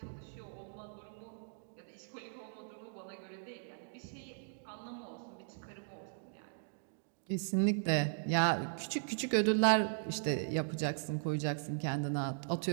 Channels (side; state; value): left; silent; digital silence